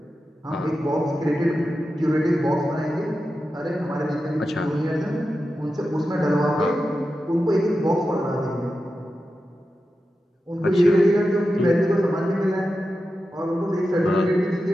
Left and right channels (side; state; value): both; normal; correlation 0.91